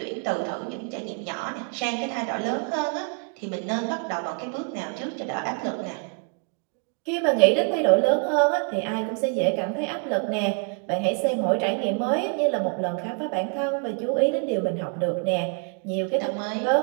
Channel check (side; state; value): left; quieter; 39.9 dB